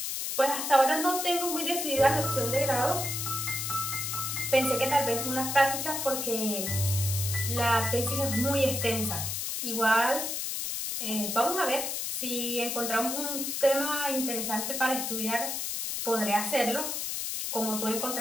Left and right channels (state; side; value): noise; left; hiss, 2 dB below the sound